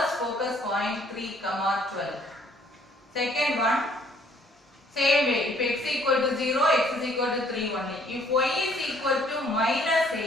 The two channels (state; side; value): normal; both; correlation 0.62